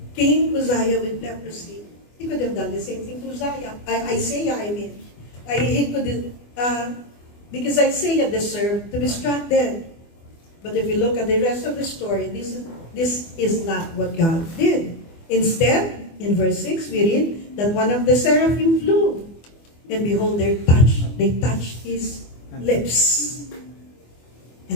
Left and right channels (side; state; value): right; late; 24 ms